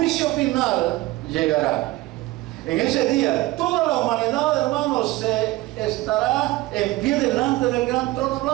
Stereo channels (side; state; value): left; quieter; 18.7 dB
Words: final llegará. En ese día, toda la humanidad, hermanos, estará en pie delante del gran trono